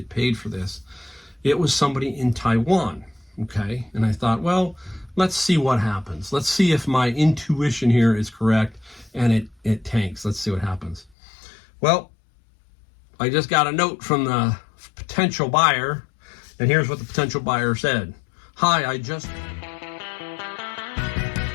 paid for this. It was somebody in Taiwan, okay? And I thought, well, let's see what happens. Let's see if my intuition here is correct and it tanks. Let's see what happens. Well, I just got a note from the potential buyer, and here's what the potential buyer said. Hi, I just...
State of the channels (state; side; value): drops out; right; at 11.2 s